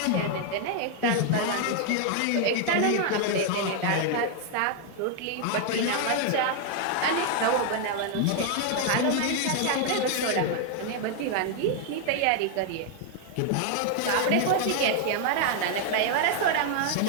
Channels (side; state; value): both; different; correlation 0.00